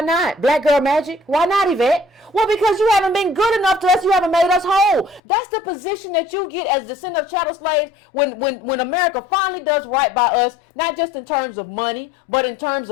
not? Black girl magic? Why not, Yvette? Well, because you haven't been good enough to us. You haven't made us whole. That's the position that you get as descendant of chattel slaves when America finally does right by us, not just in terms of money, but in terms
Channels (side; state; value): right; drops out; at 5.2 s